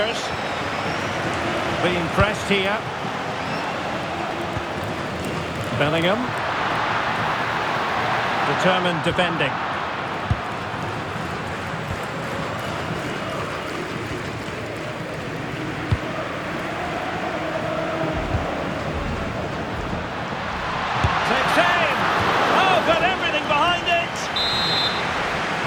Being pressed here. Bellingham. Determined defending. Takes aim. Oh, got everything behind it.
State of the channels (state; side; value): identical; both; correlation 1.00